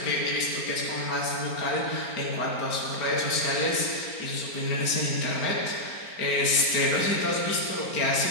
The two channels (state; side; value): late; right; 4.4 ms